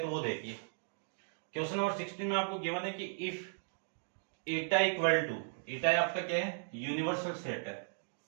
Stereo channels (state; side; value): silent; left; digital silence